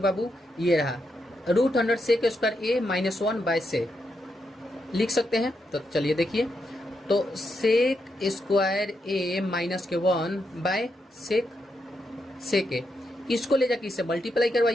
बाबू, ये रहा √100 sec square A minus 1 by sec लिख सकते हैं। तो चलिए देखिए, तो सेक स्क्वायर ए माइनस के 1 बाय सेक ए, इसको ले जाके इससे मल्टीप्लाई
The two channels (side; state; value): both; normal; correlation 0.82